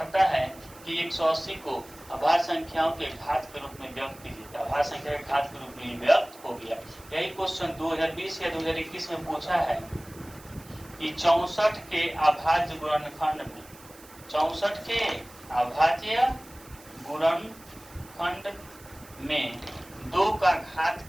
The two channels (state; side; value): noise; right; hiss, 22 dB below the sound